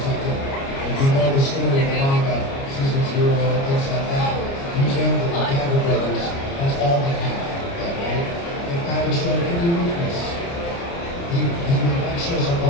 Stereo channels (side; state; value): right; late; 29 ms